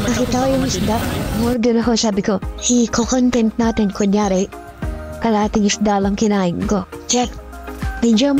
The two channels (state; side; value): identical; both; correlation 1.00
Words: nakita ko yung isda. Order ako. Sabi ko, i-content natin. Kunyari, kalating isda lang kinain ko. Check. Medyo